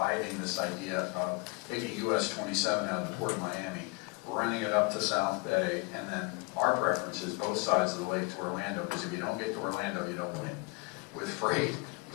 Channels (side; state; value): right; quieter; 27.0 dB